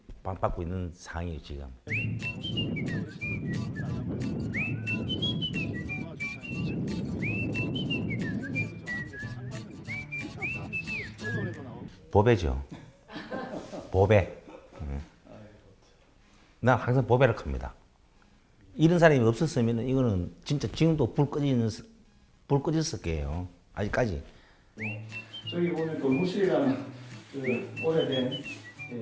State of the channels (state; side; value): identical; both; correlation 1.00